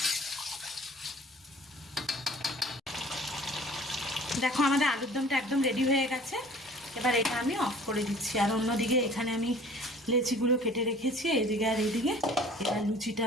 দেখো আমাদের আলুর দমটা একদম রেডি হয়ে গেছে। এবার এটা আমি অফ করে দিচ্ছি। আর অন্যদিকে এখানে আমি লেচিগুলো কেটে রেখেছি, এইদিকে আর এইদিকে। এবার লুচিটা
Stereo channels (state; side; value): normal; both; correlation 0.49